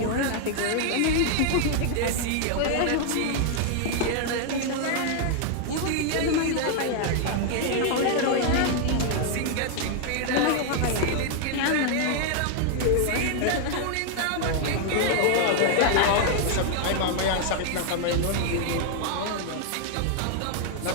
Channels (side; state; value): both; different; correlation 0.00